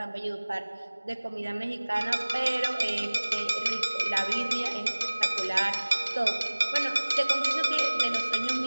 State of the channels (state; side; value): inverted; both; correlation -1.00